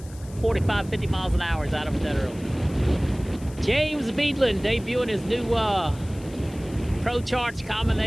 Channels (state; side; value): noise; left; hiss, 22 dB below the sound